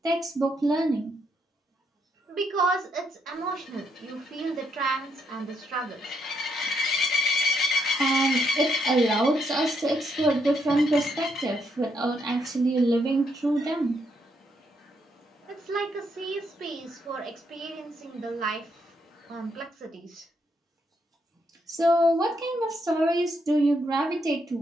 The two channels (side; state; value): both; normal; correlation 0.76